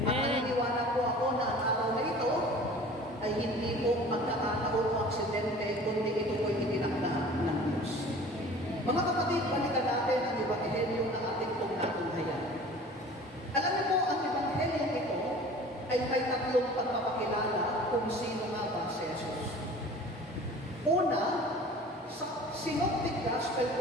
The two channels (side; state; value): both; normal; correlation 0.44